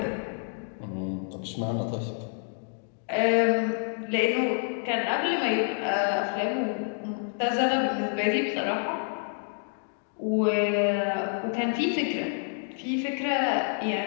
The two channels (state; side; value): silent; right; 59 dB below the other